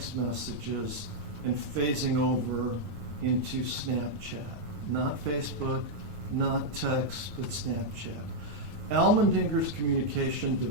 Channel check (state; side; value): late; left; 9.3 ms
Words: messages and phasing over into Snapchat. Not Facebook, not text, but Snapchat. Elmeninger's communication